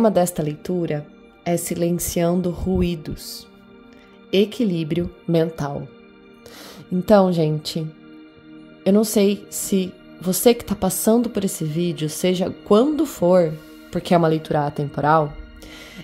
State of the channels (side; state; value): both; identical; correlation 1.00